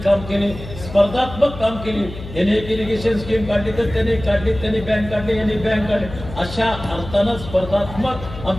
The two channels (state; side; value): noise; left; hum, 12 dB below the sound